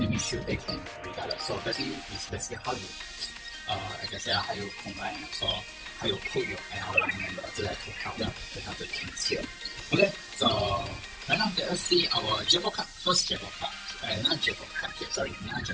shield they can regardless. So basically it's basically how you I can say how you combine, so how you put your ally member to help them to help the teams here. Okay, so right now let us see our Jackpot card, first Jackpot card, not Jackpot card here, sorry, not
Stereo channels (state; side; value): identical; both; correlation 1.00